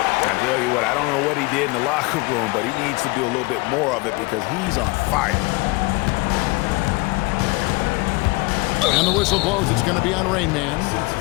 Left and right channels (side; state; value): right; quieter; 25.0 dB